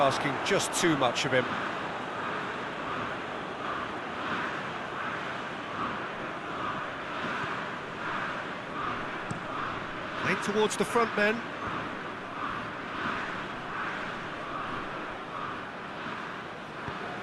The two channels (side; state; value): both; identical; correlation 1.00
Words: just too much of him. towards the front men.